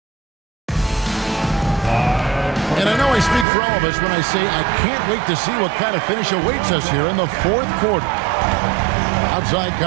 And I know I speak for all of us when I say I can't wait to see what kind of finish awaits us here in the fourth quarter. Outside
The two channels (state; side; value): drops out; left; at 3.5 s